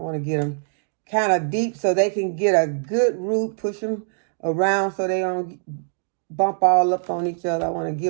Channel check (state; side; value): silent; left; digital silence